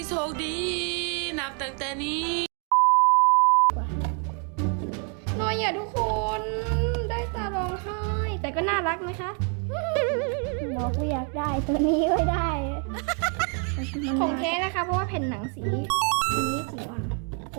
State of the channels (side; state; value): left; quieter; 39.5 dB